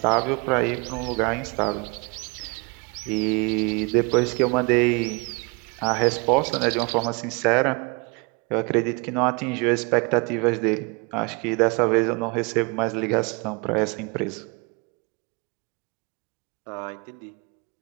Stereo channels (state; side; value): quieter; left; 30.1 dB